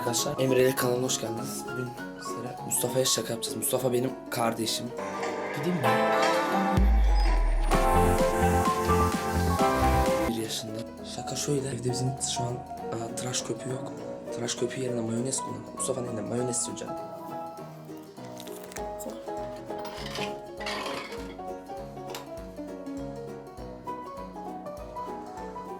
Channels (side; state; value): both; identical; correlation 1.00